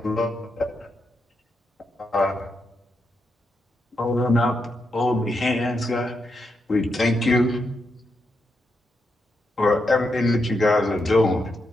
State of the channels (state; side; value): normal; both; correlation 0.83